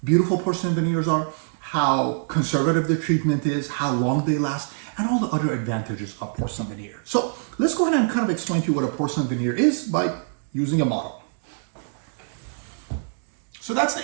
beautiful porcelain veneers are, how conservative the treatment is, how long they last, and all the other advantages of porcelain veneer. So let's go ahead and kind of explain to you what a porcelain veneer is by using a model. So that's the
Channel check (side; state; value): left; silent; digital silence